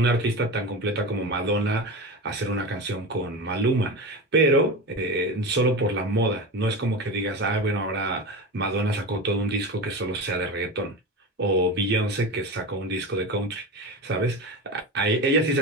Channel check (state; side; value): normal; both; correlation 0.25